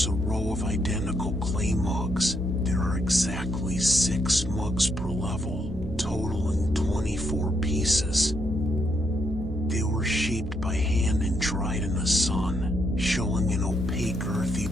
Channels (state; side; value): normal; both; correlation 0.77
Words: a row of identical clay mugs. There are exactly 6 mugs per level, totaling 24 pieces. They were shaped by hand and dried in the sun, showing an opaque earthy